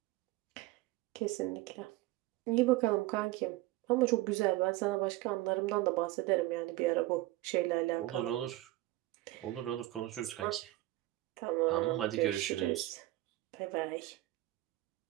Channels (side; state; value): left; quieter; 17.7 dB